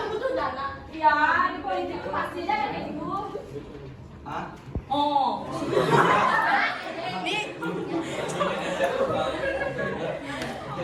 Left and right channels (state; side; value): identical; both; correlation 1.00